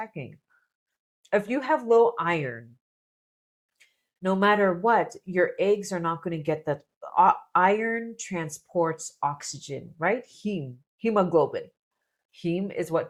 If you have low iron, no matter what, your eggs are not going to get the iron transports oxygen, right? Hemoglobin. Heme is what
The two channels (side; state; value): both; identical; correlation 1.00